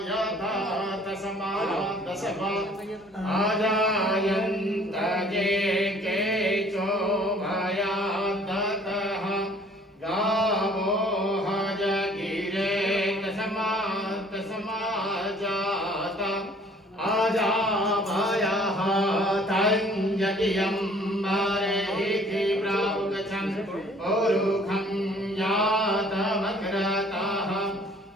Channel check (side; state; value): both; normal; correlation 0.55